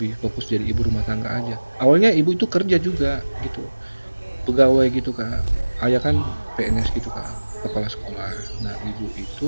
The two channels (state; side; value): inverted; both; correlation -1.00